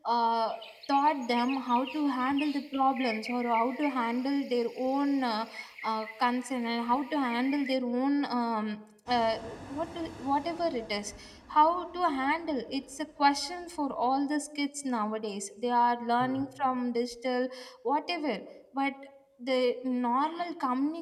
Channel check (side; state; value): both; identical; correlation 1.00